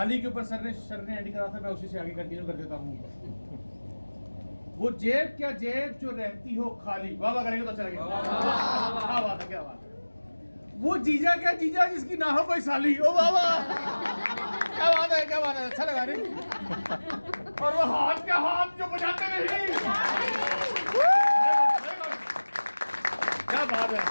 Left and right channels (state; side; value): inverted; both; correlation -1.00